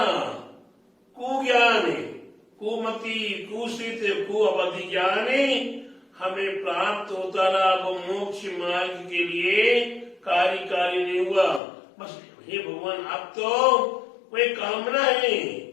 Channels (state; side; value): drops out; right; at 11.6 s